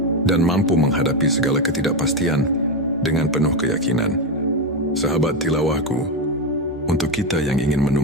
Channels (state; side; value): normal; both; correlation 0.10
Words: dan mampu menghadapi segala ketidakpastian dengan penuh keyakinan. Sahabat tilawahku, untuk kita yang ingin